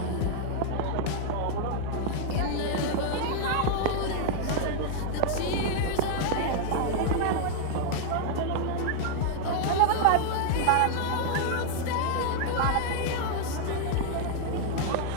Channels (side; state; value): both; different; correlation 0.00